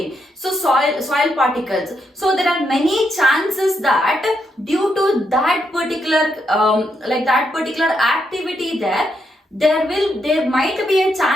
So soil particles. So there are many chances that due to that particular activity there might be a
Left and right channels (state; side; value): normal; both; correlation 0.80